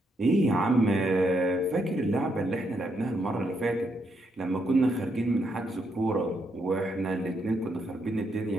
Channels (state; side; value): normal; both; correlation 0.78